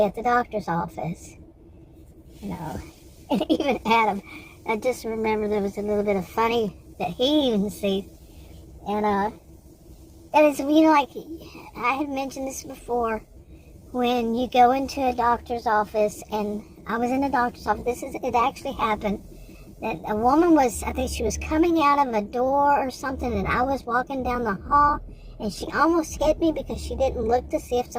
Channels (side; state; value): both; identical; correlation 1.00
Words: at the doctor's office. You know, and even Adam, I just remember there was a little bit of funny that he even sees. And it's, you know, like, I had mentioned this before, when you go into a doctor's office, and I was in a doctor's office, it actually happened, that a woman was, I think she was coming out of a door or something, and I was walking down the hall, and she almost hit me because she didn't look to see if